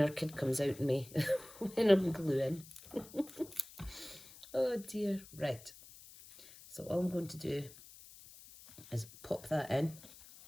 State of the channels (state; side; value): noise; left; hiss, 19 dB below the sound